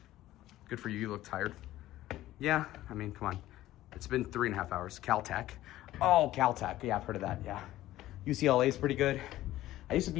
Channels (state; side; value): quieter; right; 15.0 dB